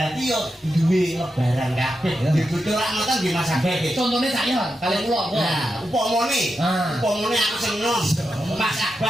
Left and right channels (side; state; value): both; normal; correlation 0.88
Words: yo duwe lebaran kabeh. Dibutuh rak ngoten nggih Mas Abeh. Contone saya kali kula. Nah, upamane, Ah. upamane aku seneng. Mas